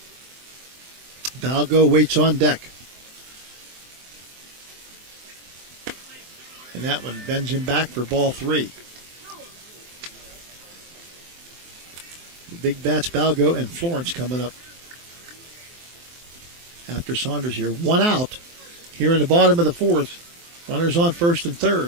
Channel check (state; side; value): late; left; 23 ms